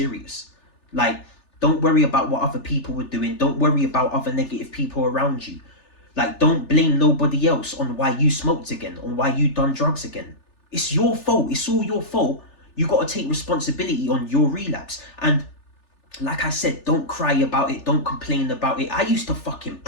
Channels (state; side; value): late; right; 3.4 ms